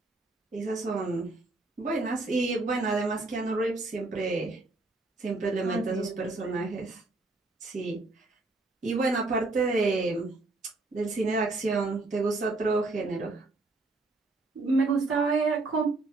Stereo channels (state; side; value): quieter; left; 3.2 dB